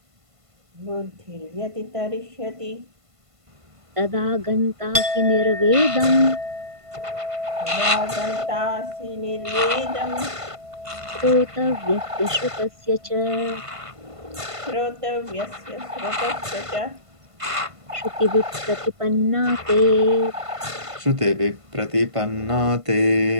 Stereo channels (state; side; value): late; left; 1.5 ms